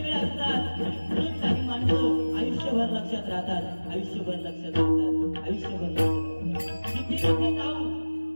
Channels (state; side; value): inverted; both; correlation -1.00